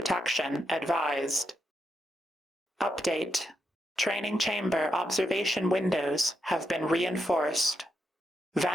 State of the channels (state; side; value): normal; both; correlation 0.81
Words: advised. Update. Training chamber observation windows have been reinforced.